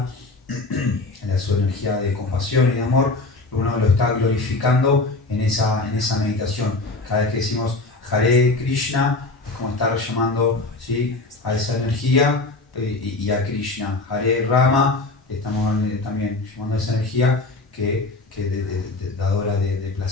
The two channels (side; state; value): right; quieter; 3.2 dB